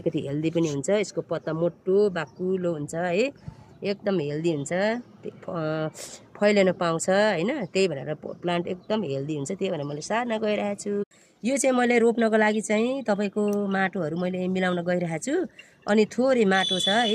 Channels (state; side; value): identical; both; correlation 1.00